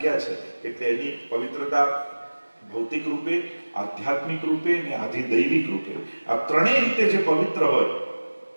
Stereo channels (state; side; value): inverted; both; correlation -1.00